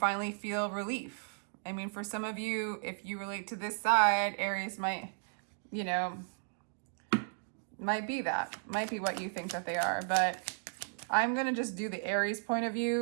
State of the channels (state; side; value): silent; left; digital silence